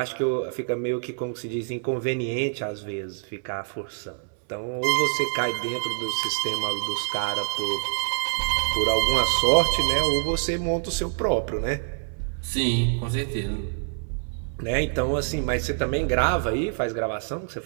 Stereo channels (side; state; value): left; silent; 61 dB below the other